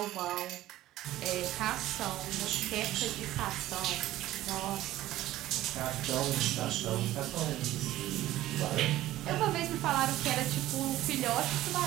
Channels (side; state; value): left; quieter; 15.0 dB